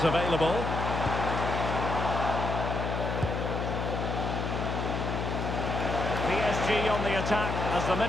available. PSG on the attack as the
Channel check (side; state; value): left; noise; hum, 2 dB below the sound